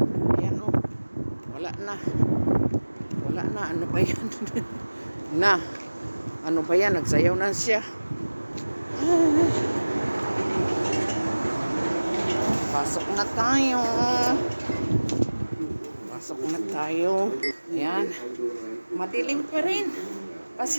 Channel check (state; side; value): inverted; both; correlation -1.00